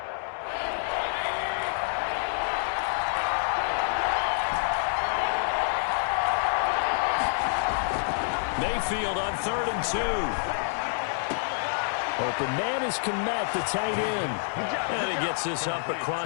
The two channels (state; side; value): silent; right; digital silence